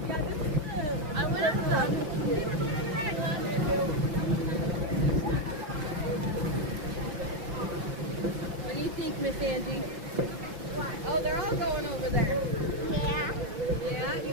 What do you think, Miss Angie? Oh, they're all going over there. Yeah, you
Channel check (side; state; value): left; late; 5.8 ms